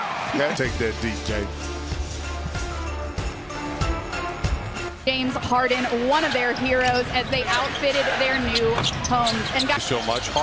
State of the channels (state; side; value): identical; both; correlation 1.00